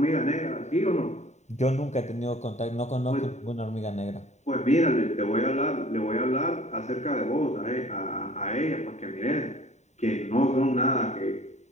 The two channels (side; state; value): right; late; 0.33 ms